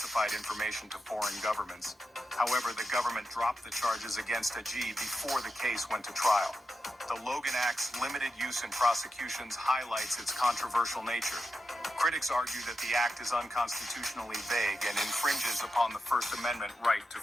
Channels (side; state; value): both; normal; correlation 0.89